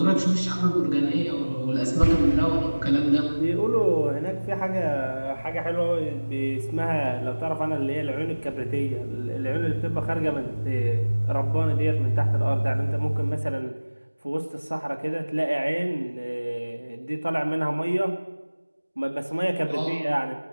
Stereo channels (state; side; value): inverted; both; correlation -1.00